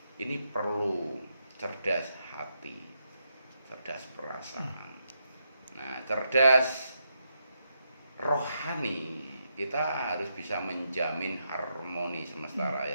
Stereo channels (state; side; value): inverted; both; correlation -0.81